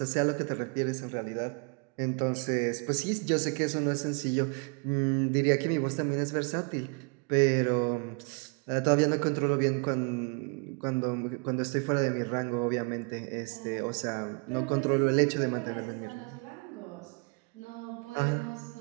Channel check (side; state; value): left; quieter; 34.9 dB